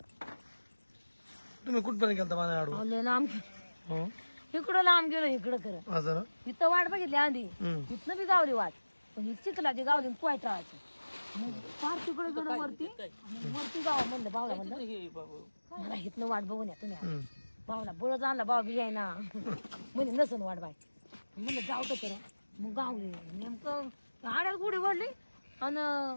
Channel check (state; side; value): inverted; both; correlation -1.00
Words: तुम्ही कुठपर्यंत गेलता माझ्या आडू लय लांब इकडं लांब गेलो इकडं खरं असं ना इथं वाट बघितली आधी हम्म. इथनं बी गावली वाट पण ही चिखलाची गावली पोयटाळाची मग फार तिकडे गेलो वरती आणि वरती गाव म्हणलं बावला म्हणलं मला इथनं वाट बघून या तुम्ही हम्म. बावला बळच आणला बाव बी आहे ना म्हणजे नसन वाट बाय म्हणलं जाऊ तर खरं मग गावली नेमकं आड्यात गुढी वडली आणि